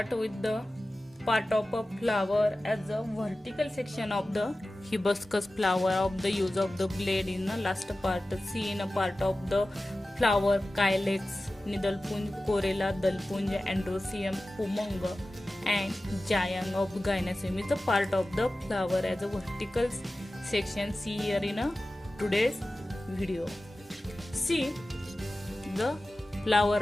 with the part of a flower as a vertical section of the hibiscus flower of the use of the blade in the last part. See in a part of the flower calyx, nidalpunj, corella, dalpunj, androecium, pumanga and giant of gynoecium is a part of the flower as a vertical section. See here in a today's video. See the flower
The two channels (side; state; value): both; normal; correlation 0.95